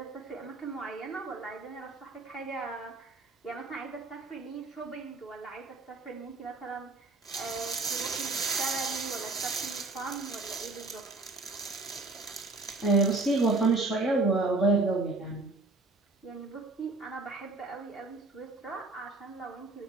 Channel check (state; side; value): quieter; left; 3.3 dB